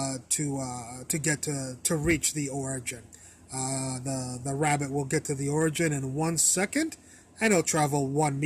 to reach the origin. The rabbit will get to the origin in 1 second, and it'll travel 1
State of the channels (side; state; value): both; identical; correlation 1.00